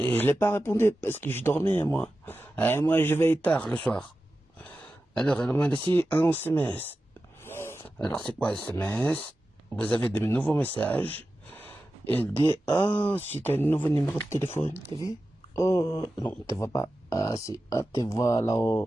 l'ai pas répondu parce que je dormais, moi. Moi, je vais tard le soir. Alors, elle m'a laissé un SMS. Alors, c'est quoi un SMS? Vous avez de nouveaux messages. Elle dit, c'est un nouveau numéro de téléphone, t'as vu? Oh, non, tu vois pas. Ah, si, tu vois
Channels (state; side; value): normal; both; correlation 0.93